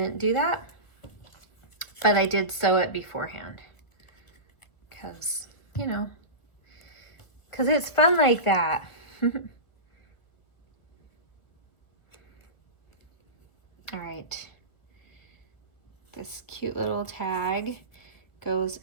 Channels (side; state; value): right; late; 1.6 ms